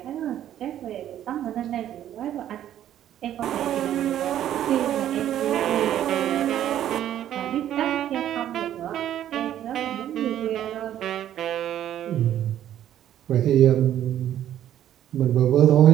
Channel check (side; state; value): left; quieter; 11.3 dB